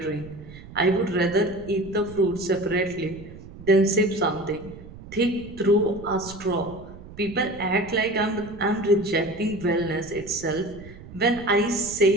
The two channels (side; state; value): right; noise; rumble, 16 dB below the sound